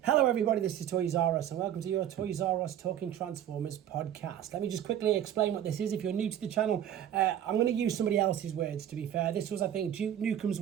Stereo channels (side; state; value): left; quieter; 10.6 dB